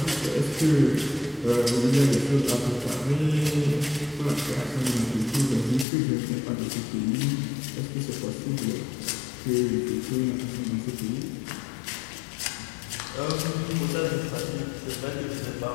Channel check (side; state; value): right; drops out; at 5.9 s